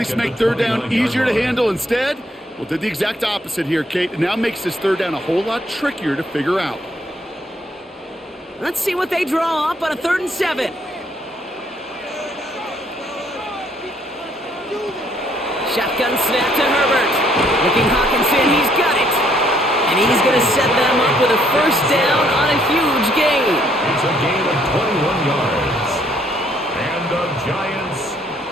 make 3rd down easier to handle instead? Well, did the exact opposite here, Kate. It now makes this 3rd down a whole lot trickier to figure out. Let's see what they draw up on a 3rd and 7. Shotgun snap to Herbert. Looking Hawkinson, he's got it. And he's going to set them up with a 1st down on a huge gain. It's a gain of 21 yards. And the Giants,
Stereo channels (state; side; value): normal; both; correlation 0.67